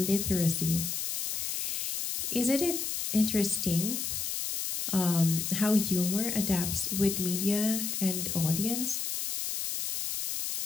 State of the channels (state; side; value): noise; left; hiss, 2 dB below the sound